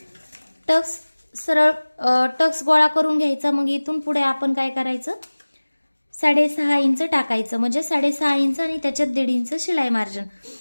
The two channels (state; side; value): inverted; both; correlation -1.00